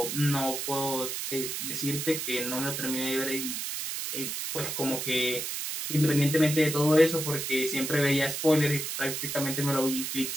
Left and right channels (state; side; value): noise; right; hiss, 4 dB below the sound